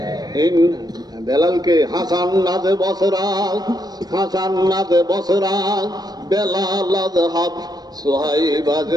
বেলালকে হাসান নাজে বসরা, হাসান নাজে বসরা, বেলাল হাব সোহাইব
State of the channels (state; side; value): late; left; 0.19 ms